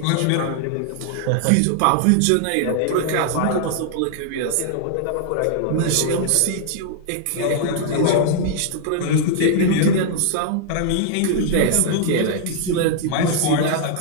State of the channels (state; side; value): different; both; correlation -0.01